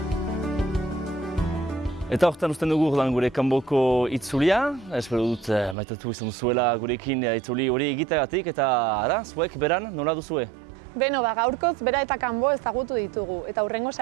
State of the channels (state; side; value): drops out; left; at 5.8 s